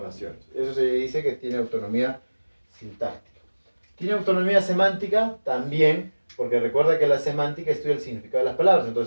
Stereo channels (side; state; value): both; inverted; correlation -1.00